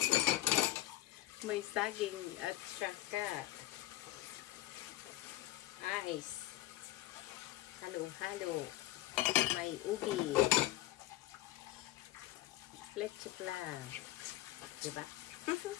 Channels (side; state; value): right; quieter; 15.5 dB